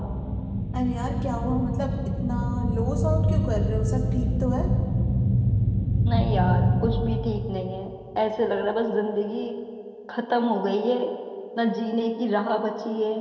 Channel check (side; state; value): both; identical; correlation 1.00